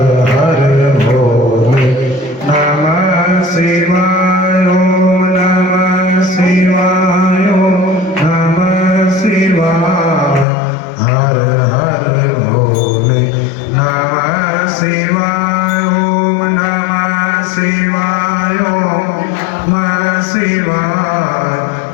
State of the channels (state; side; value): drops out; right; at 10.5 s